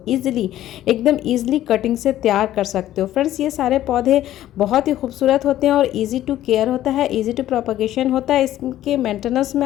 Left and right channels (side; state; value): right; quieter; 13.2 dB